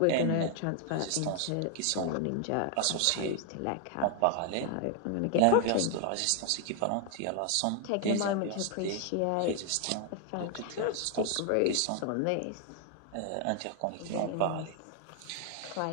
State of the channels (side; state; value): both; different; correlation 0.00